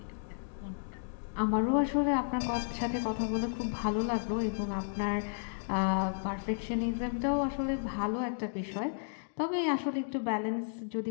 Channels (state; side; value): silent; right; digital silence